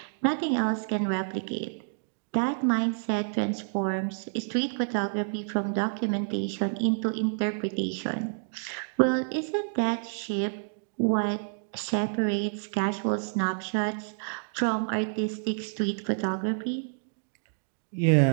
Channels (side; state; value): left; silent; digital silence